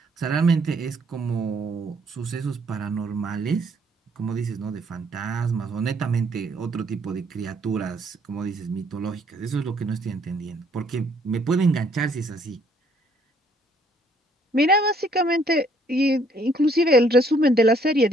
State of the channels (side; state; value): both; normal; correlation 0.65